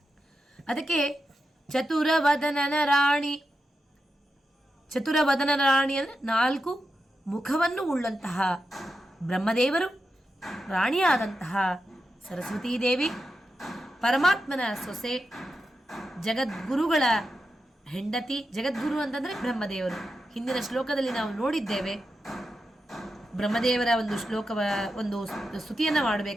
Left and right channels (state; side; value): normal; both; correlation 0.89